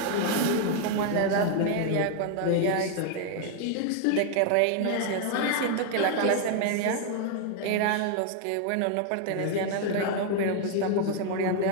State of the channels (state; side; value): different; both; correlation 0.00